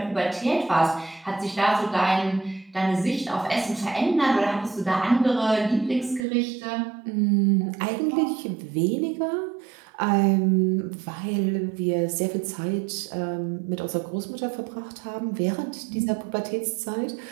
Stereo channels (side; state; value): left; drops out; at 6.2 s